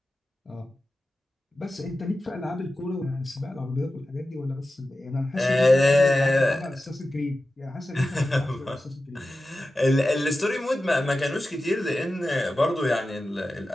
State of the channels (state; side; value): normal; both; correlation 0.94